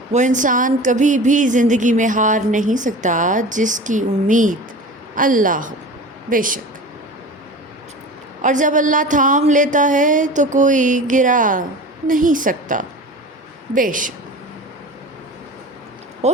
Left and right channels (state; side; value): normal; both; correlation 0.35